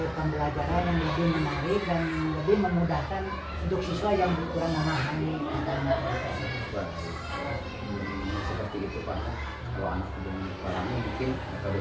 pembelajaran yang lebih menarik dan lebih memudahkan untuk siswa yang kurang memahami tentang materi tersebut. Seperti itu pak. Kalau anak belum memahami, mungkin metode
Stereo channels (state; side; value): identical; both; correlation 1.00